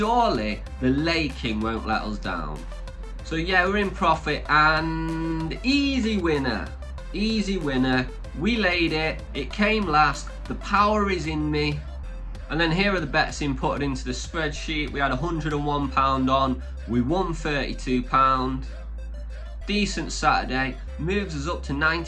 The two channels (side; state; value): both; identical; correlation 1.00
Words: the lay king won't let us down. So yeah, we're in profit, and easy winner. Easy winner. We laid it. It came last. The power is in me. And then here are the bets inputted into the spreadsheet. We had £101 on. We won £32. Decent Saturday. Moves us up to